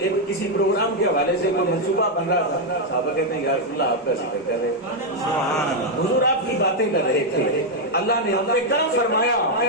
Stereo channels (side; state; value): both; normal; correlation 0.00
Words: کسی پروگرام کے حوالے سے کوئی منصوبہ بن رہا تھا، صحابہ کہتے ہیں یا رسول اللہ آپ کا ذکر کر رہے ہیں، حضور آپ کی باتیں کر رہے تھے، اللہ نے ہم پہ کرم فرمایا،